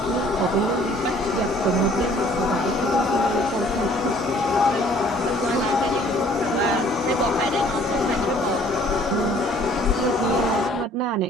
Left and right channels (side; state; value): both; normal; correlation 0.56